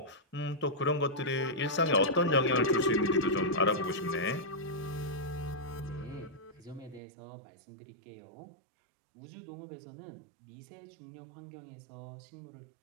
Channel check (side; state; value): left; drops out; at 7.0 s